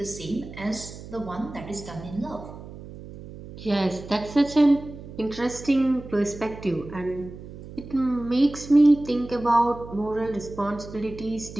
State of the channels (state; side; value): noise; right; hum, 14 dB below the sound